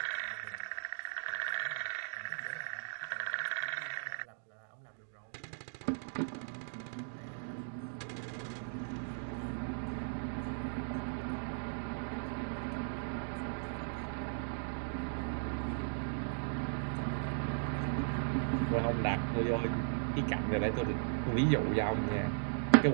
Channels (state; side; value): silent; left; digital silence